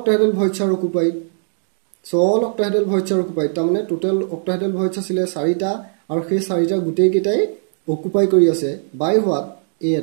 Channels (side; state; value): left; silent; digital silence